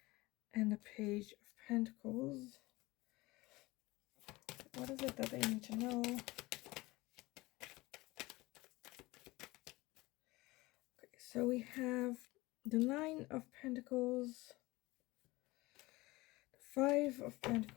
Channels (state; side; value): quieter; right; 21.0 dB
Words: and the Page of Pentacles. What is it that they need to know? Okay, so we have the 9 of Pentacles, the 5 of